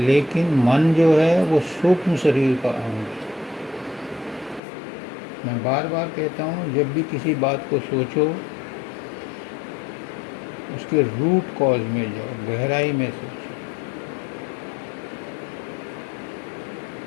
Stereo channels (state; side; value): drops out; right; at 4.6 s